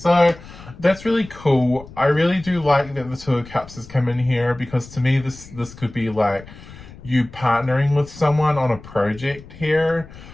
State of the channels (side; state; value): left; noise; rumble, 18 dB below the sound